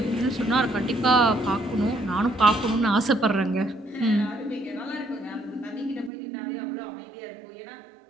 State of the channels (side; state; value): left; drops out; at 6.1 s